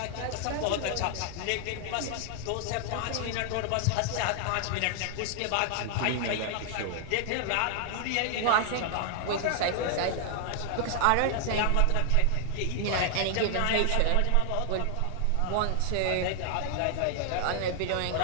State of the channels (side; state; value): both; different; correlation 0.00